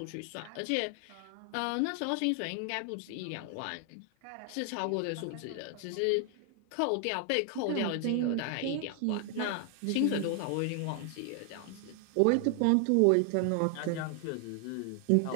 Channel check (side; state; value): both; different; correlation 0.00